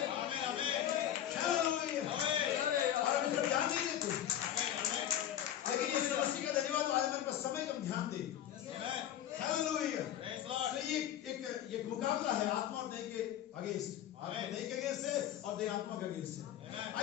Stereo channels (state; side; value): quieter; right; 11.1 dB